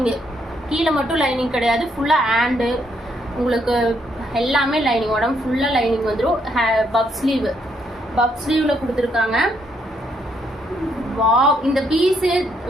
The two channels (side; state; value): both; normal; correlation 0.73